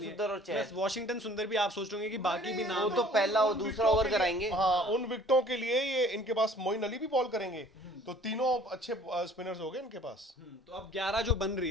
है। सुंदर और चहल। Plus वॉशिंगटन सुंदर भी आप सोच रहे कि बाकी भी नाम वो तो पहला और दूसरा ओवर कराएंगे। हाँ, उन विकेटों के लिए ये इनके पास मोइन अली भी बॉल करेंगे, तो तीनों अच्छे स्पिनर्स हो गए इनके पास। तो अब 11 जो बन रही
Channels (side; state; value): both; normal; correlation 0.52